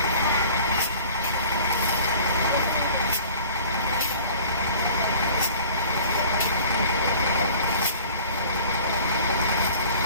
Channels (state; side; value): inverted; both; correlation -0.46